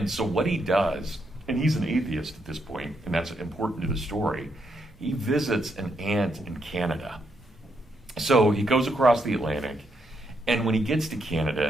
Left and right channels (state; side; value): normal; both; correlation 0.78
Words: so what he does, and he's an atheist at this point, and that's important to the story, he visits an aunt in Canada. So he goes across the Atlantic, and when he gets to Canada,